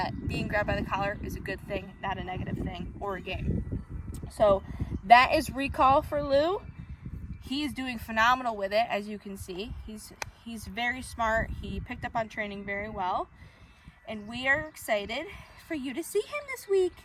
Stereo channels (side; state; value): both; identical; correlation 1.00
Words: being grabbed by the collar is a good thing, not a negative thing or a game. So that is recall for Lou. He is doing phenomenal with it, as you can see. He's very smart. He picked up on training very well. And we are excited for you to see him this week.